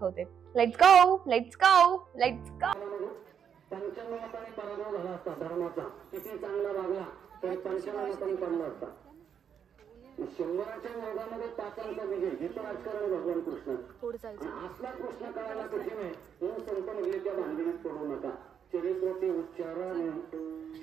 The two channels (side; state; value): left; quieter; 7.9 dB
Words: Let's go, let's go, let's go. पंचमहापाणी पराभव झाला असता धर्माचा, किती चांगला वागला तर पंचमहापाणी पडला असता. शंभराच्या वर्गामध्ये पाचांचा विजय, हिचं राजकारण भगवान कृष्ण. असला कृष्ण कळायला कठीण आहे म्हणून संत म्हणले त्या भांडणीत पडू नका. चरित्राचे उच्चारण